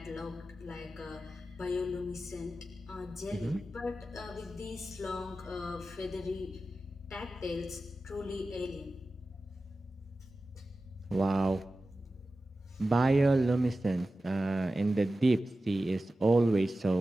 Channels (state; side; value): normal; both; correlation 0.94